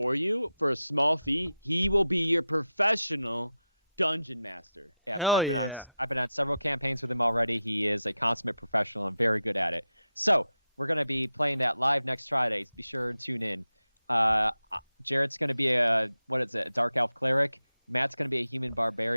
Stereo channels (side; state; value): both; inverted; correlation -0.90